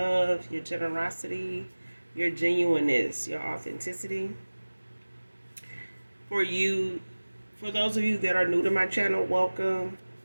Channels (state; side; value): inverted; both; correlation -1.00